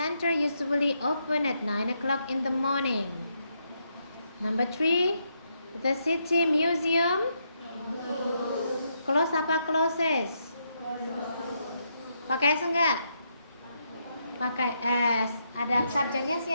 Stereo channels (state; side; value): inverted; both; correlation -0.79